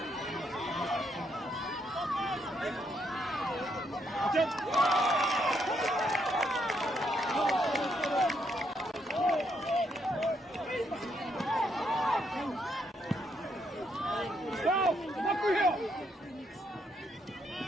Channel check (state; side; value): normal; both; correlation 0.76